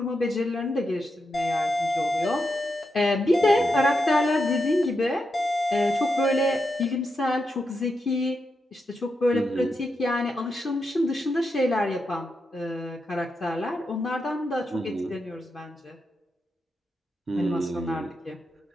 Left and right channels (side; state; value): both; normal; correlation 0.86